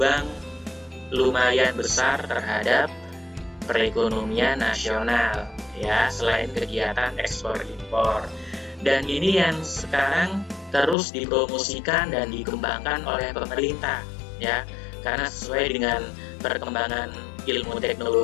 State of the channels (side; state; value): right; drops out; at 11.0 s